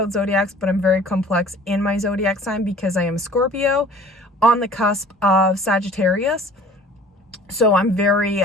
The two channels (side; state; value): both; normal; correlation 0.48